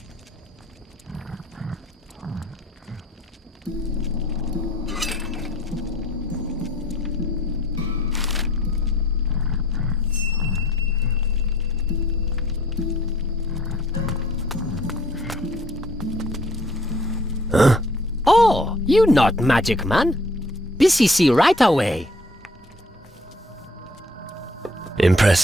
Huh? Oh, you not magic man. Busy see right away.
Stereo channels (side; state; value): both; normal; correlation 0.58